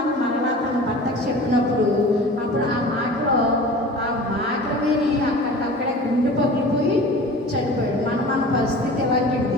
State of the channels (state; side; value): normal; both; correlation 0.39